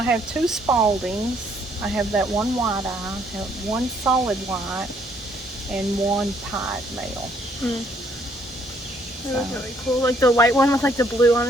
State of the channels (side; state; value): both; normal; correlation 0.67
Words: have 2 Spaldings. I have that one white eye, I have 1 solid white, and 1 pied male. That was really cool. Like the white one with like the blue on